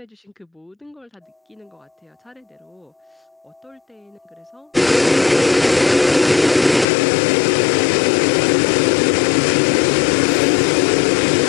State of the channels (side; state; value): right; drops out; at 6.9 s